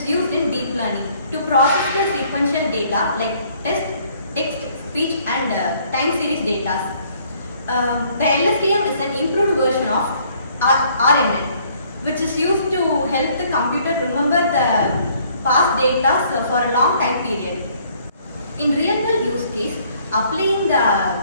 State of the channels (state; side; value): inverted; both; correlation -0.62